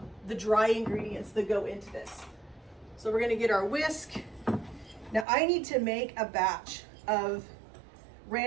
the dry ingredients that go into this. So we're gonna get our whisk. Now I need to make a batch of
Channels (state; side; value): drops out; left; at 5.2 s